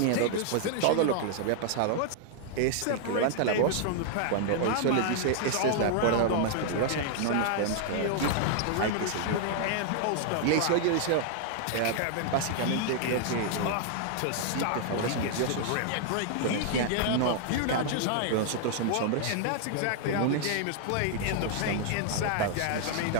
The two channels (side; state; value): both; different; correlation 0.00